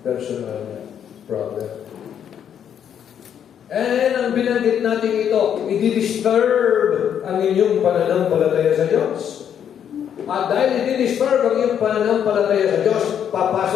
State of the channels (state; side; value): quieter; right; 8.9 dB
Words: personal problem. And ang binanggit natin ito, i-disturb ang inyong pananampalataya sa Diyos. At dahil i-disturb ang inyong pananampalataya sa Diyos,